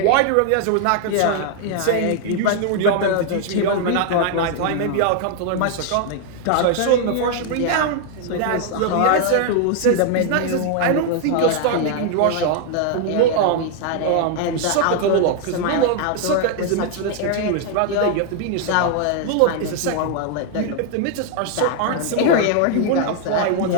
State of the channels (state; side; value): different; both; correlation 0.00